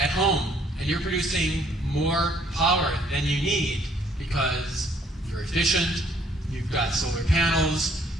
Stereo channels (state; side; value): normal; both; correlation 0.64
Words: home and you're producing more power than you need because you're efficient, you've got solar panels,